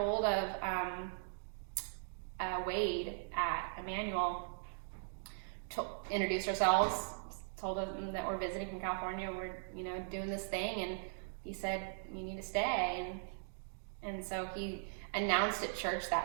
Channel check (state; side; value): silent; left; digital silence